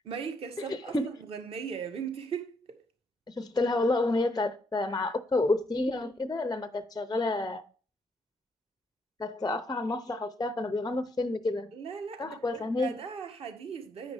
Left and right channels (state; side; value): normal; both; correlation 0.74